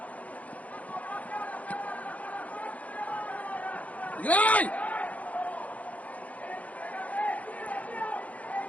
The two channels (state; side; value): late; right; 0.069 ms